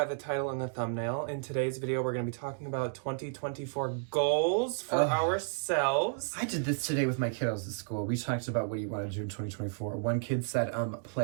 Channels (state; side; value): silent; left; digital silence